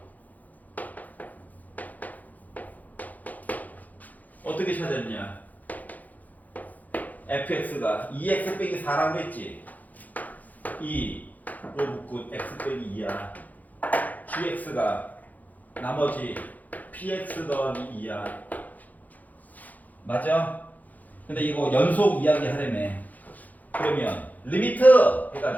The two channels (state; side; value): late; right; 0.080 ms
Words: 어떻게 찾았냐? fx가 2x 빼기 4라고 했지? 2로 묶고 x 빼기 2야. gx가 나머지 px 더하기 2야. 맞아? 근데 이거 연속 이야기 하려며. 그러면 리미트